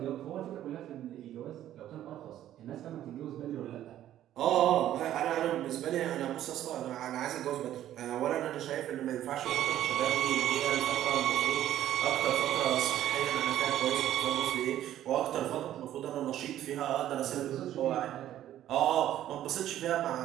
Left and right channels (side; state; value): left; quieter; 12.3 dB